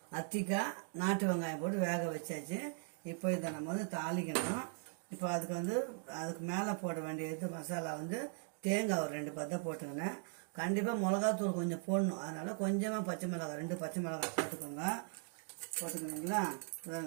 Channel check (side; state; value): left; silent; 52 dB below the other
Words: அத்திக்காய், நாட்டு வெங்காயம் போட்டு வேக வச்சாச்சு. இப்போ இதை நம்ம வந்து தாளிக்கணும். இப்போ அதுக்கு மேலே போட வேண்டியது மசாலா வந்து தேங்காய் ஒரு 2 பத்தை போட்டுக்கினேன். கண்டிப்பாக மிளகாத்தூள் கொஞ்சம் போடணும். அதனால் கொஞ்சமாக பச்சை மிளகாய் 2 பச்சை மிளகாய் போட்டுக்கணுங்களா.